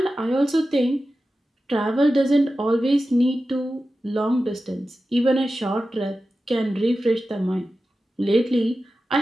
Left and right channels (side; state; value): both; normal; correlation 0.93